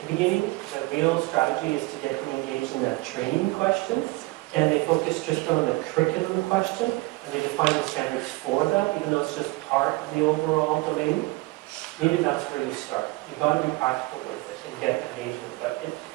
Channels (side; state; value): left; quieter; 23.0 dB